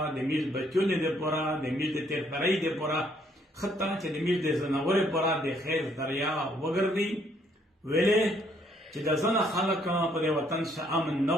د میز بچونه د پورا د میز د تیرپړی د پورا خطا چې د میز د زناور پورا د خیر دریا وګرځي ویلې چې د زنه خلک په د وطن شه امن نه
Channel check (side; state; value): both; normal; correlation 0.67